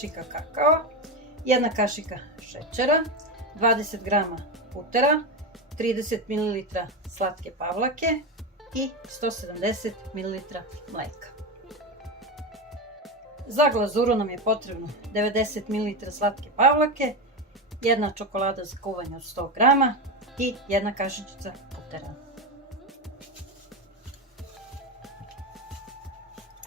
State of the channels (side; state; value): both; normal; correlation 0.16